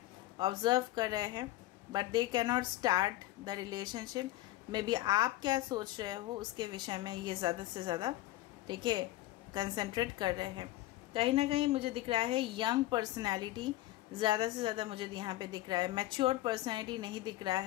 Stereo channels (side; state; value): right; quieter; 16.4 dB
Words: ऑब्जर्व कर रहे हैं, but they can not start the relationship. May be आप क्या सोच रहे हो उसके विषय में ये ज़्यादा से ज़्यादा, ठीक है, कंसंट्रेट कर रहे हैं। कहीं ना कहीं मुझे दिख रहा है यंग पर्सनैलिटी ज़्यादा से ज़्यादा मुझे यहाँ पे दिख रहा है। मैच्योर पर्सनैलिटी नहीं दिख रहा